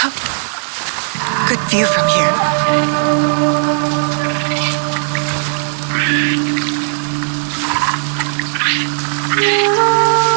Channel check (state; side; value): silent; left; 57 dB below the other